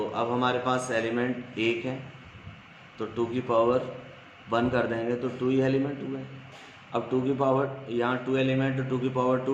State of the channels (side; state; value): both; identical; correlation 1.00